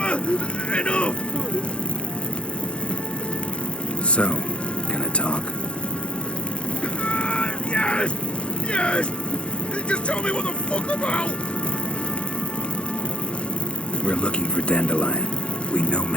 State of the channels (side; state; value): right; late; 0.058 ms